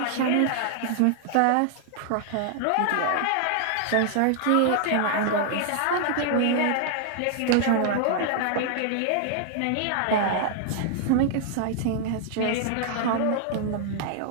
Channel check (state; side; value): different; both; correlation 0.00